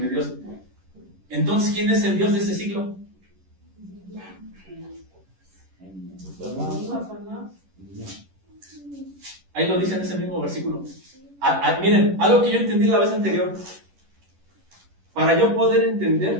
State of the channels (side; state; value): left; late; 11 ms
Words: Dios. Entonces, ¿quién es el Dios de este siglo? Ahí lo dice en ese mismo versículo. Miren, algo que yo entendí la vez anterior. Para yo poder